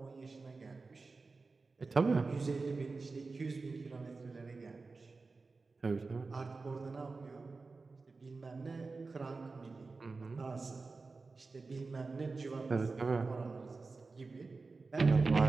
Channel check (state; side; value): quieter; left; 4.0 dB